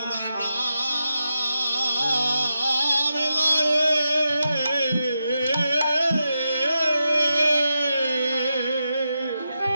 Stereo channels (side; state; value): both; inverted; correlation -0.88